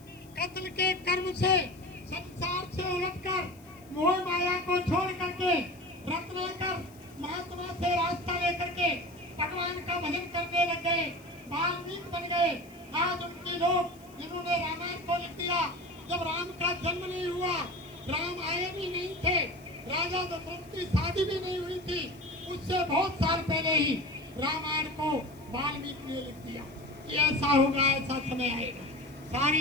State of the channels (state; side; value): noise; left; hiss, 27 dB below the sound